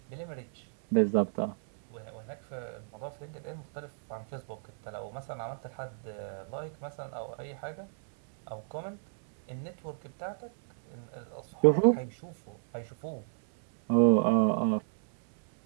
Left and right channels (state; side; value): silent; left; 56 dB below the other